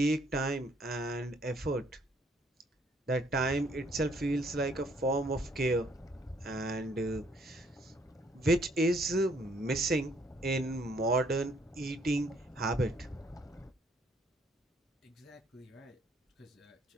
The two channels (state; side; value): normal; both; correlation 0.66